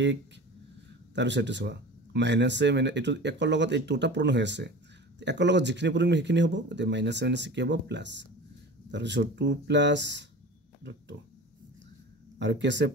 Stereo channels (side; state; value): both; normal; correlation 0.36